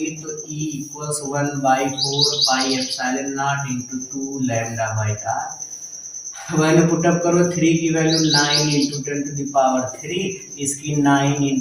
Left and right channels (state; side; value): identical; both; correlation 1.00